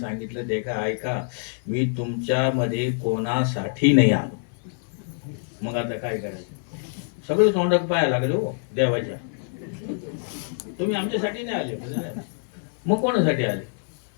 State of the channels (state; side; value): silent; right; digital silence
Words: देखा ऐका, मी तुमच्यामध्ये कोणासाठी नाही आलो। मग आता काय करायचं? सगळं तोंडात पाया लागले हो देवाच्या, तुम्ही आमच्यासाठी नाही आले, मग कोणासाठी आले?